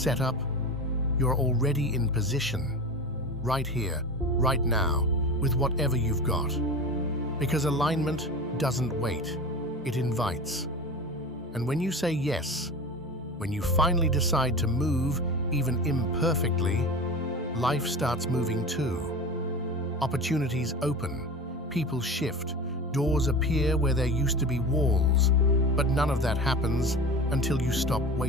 You're already in position. Right here, right now, with whatever you've got. Because alignment doesn't wait. It invites. And when you say yes, when you finally decide to move, even imperfectly, life starts moving too. Opportunities open, people shift, doors appear where there used to be walls, but none of that happens until you stop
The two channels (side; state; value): both; normal; correlation 0.31